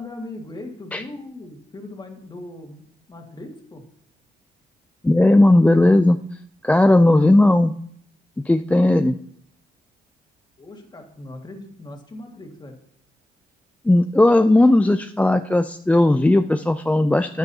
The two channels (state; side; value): normal; both; correlation 0.97